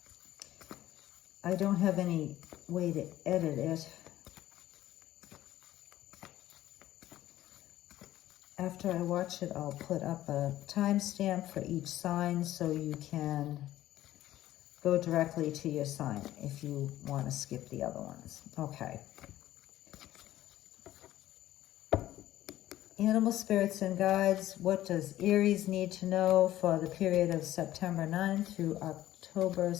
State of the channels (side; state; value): right; quieter; 14.1 dB